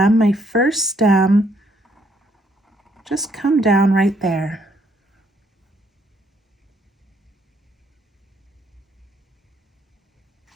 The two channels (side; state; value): both; normal; correlation 0.70